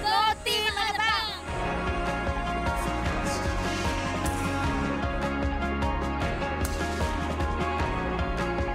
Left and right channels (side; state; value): both; identical; correlation 1.00